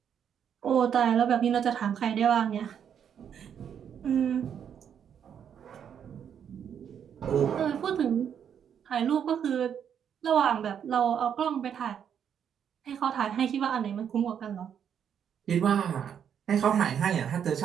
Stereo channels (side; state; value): left; quieter; 8.4 dB